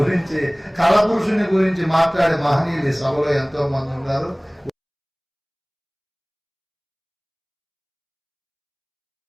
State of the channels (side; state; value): both; identical; correlation 1.00